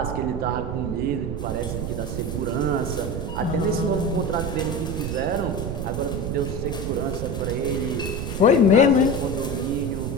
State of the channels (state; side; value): noise; right; rumble, 4 dB below the sound